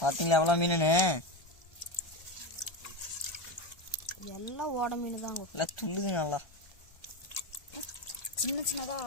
பாத்தீங்களா எவ்வளோ மீனுன்னு? எல்லாம் ஓட மீன் தாங்க. இல்லை துள்ளுது நல்லா. சின்ன சின்னதா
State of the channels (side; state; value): right; late; 1.4 ms